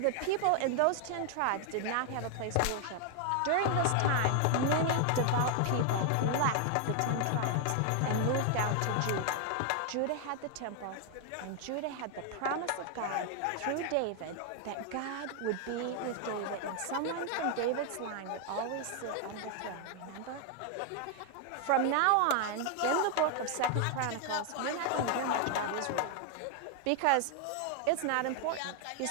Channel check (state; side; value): different; both; correlation 0.00